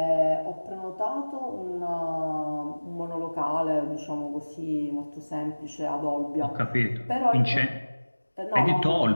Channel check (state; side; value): inverted; both; correlation -1.00